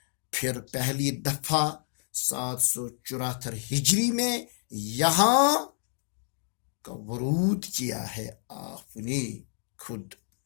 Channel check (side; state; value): right; silent; digital silence